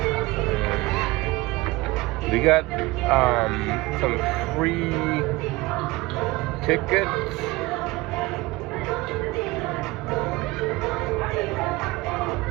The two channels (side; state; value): left; quieter; 21.0 dB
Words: we got some free tickets.